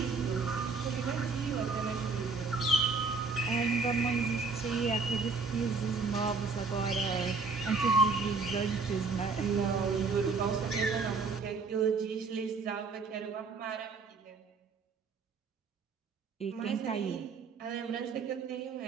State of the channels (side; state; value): left; quieter; 4.4 dB